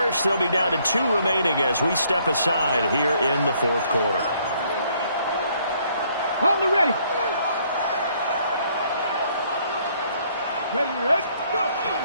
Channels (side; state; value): both; inverted; correlation -0.66